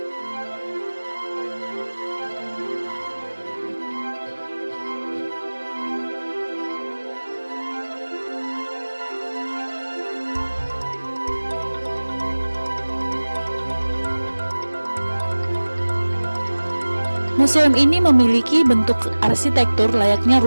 Museum ini memiliki bentuk arsitektur layaknya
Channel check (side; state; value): both; inverted; correlation -1.00